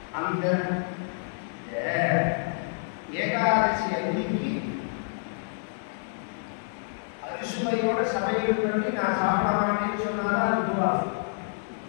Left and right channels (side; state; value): right; silent; digital silence